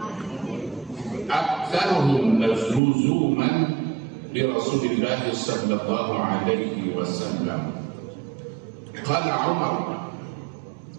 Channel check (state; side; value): drops out; left; at 2.8 s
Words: aktsarhum luzuman bi Rasulillah sallallahu alaihi wasallam. Qala Umar